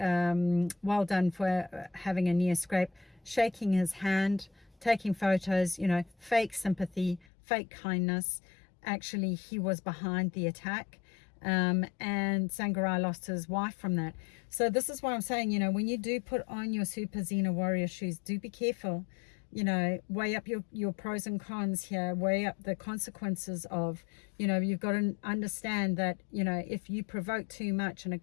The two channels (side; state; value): right; drops out; at 7.2 s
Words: well done for having a near scrape, shaking his hand, taking photos, you know, fake sympathy, fake kindness. Actually, he was behind the attack. And Sangarai lost his wife from that. So this is what I'm saying, you know, when you do put on your super Zena Warrior shoes, do be careful, you know, weigh up your pros and cons here, weigh up the consequences of, you know, you've got to understand that, you know, if you provoke too much and it